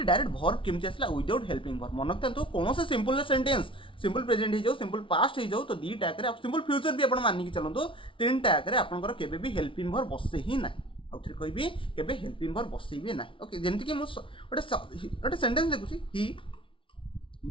डायरेक्ट भर्व केमती आसला विदाउट हेल्पिंग भर्व मन रखते कौन से सिंपल सेंटेंस सिंपल प्रेजेंट हो जाओ सिंपल पास्ट हो जाओ तो 2टा आप सिंपल फ्यूचर भी आप मानिक चलते 3टा आपंकर केबे भी हेल्पिंग भर्व बसे ही ना आउे कहि केबे हेल्पिंग भर्व बसइबे ना। ओके जेमती कि गोटे सेंटेंस देखुची ही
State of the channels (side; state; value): right; late; 0.25 ms